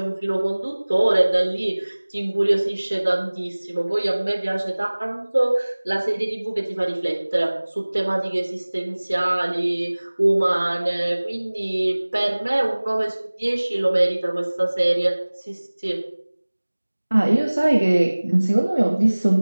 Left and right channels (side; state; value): both; inverted; correlation -1.00